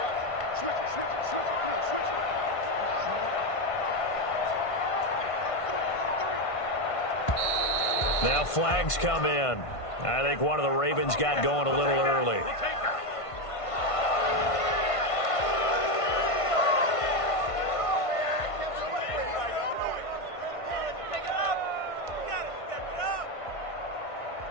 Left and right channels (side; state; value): right; late; 1.5 ms